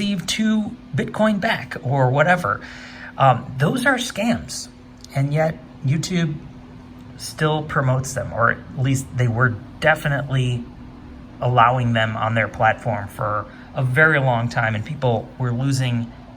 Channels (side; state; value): both; identical; correlation 1.00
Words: 2 Bitcoin back or whatever. Those are scams. And yet YouTube still promotes them, or at least they were definitely allowing them on their platform for a very long time. And people were losing